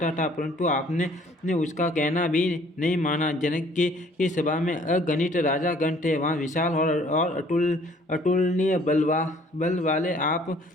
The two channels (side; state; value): both; normal; correlation 0.57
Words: था, परंतु आपने उसका कहना भी नहीं माना। जनक की सभा में अगणित राजागण थे, वहाँ विशाल और अतुलनीय बल वाले आप